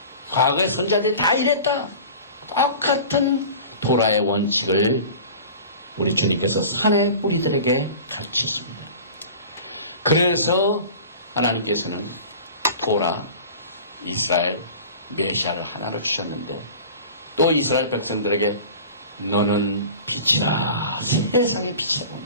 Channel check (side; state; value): both; inverted; correlation -0.39